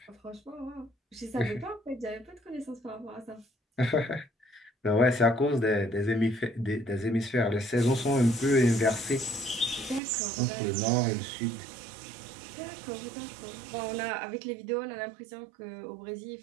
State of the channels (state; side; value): drops out; left; at 10.0 s